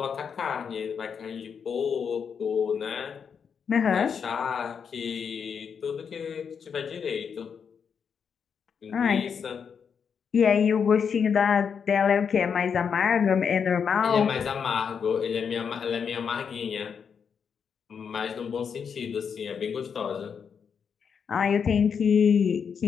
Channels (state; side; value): quieter; right; 6.7 dB